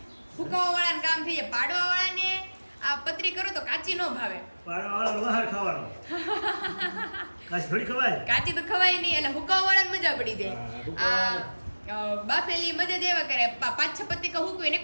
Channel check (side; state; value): both; inverted; correlation -1.00